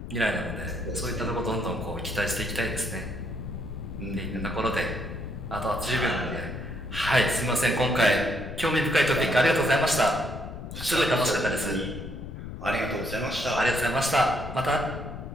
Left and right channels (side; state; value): left; noise; rumble, 9 dB below the sound